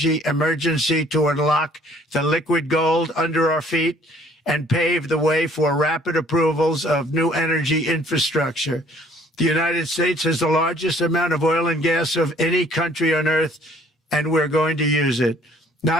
emergency to unlock the liquid gold under our feet and pave the way for rapid approvals of new energy infrastructure. The United States has the largest amount of oil and gas of any country on earth, and we're going to use it.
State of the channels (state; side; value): normal; both; correlation 0.58